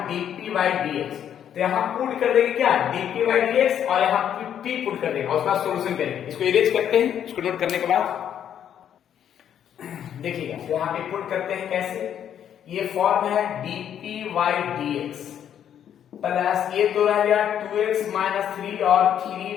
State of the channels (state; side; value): quieter; right; 9.5 dB